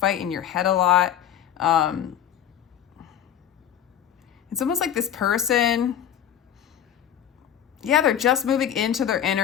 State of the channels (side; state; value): right; quieter; 9.9 dB